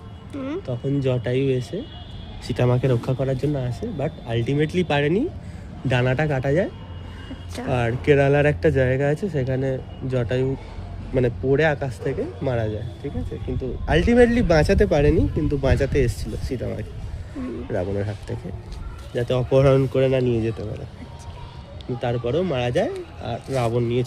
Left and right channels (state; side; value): identical; both; correlation 1.00